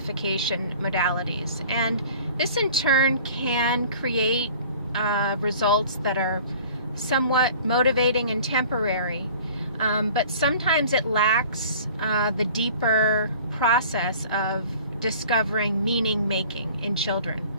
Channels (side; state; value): both; inverted; correlation -0.47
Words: modalities, and this in turn can create results that are somewhat motivating and temporary, but sometimes it lacks the deeper process of discovering meaning making in children.